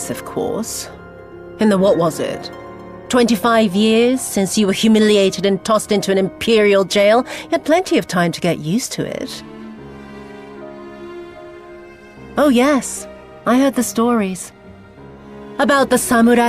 of course. In the what was it? 25 years since you were humiliated and tossed into an imperial jail? You had plenty of time to get used to it. Oh yes, I heard the stories. About the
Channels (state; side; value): identical; both; correlation 1.00